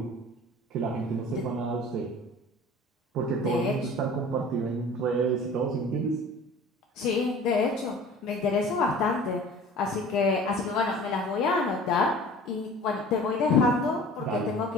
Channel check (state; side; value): normal; both; correlation 0.43